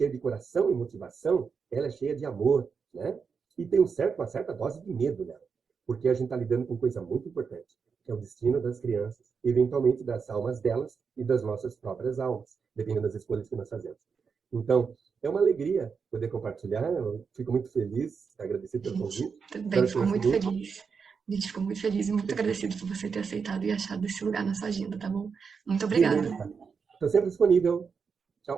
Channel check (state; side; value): quieter; left; 5.7 dB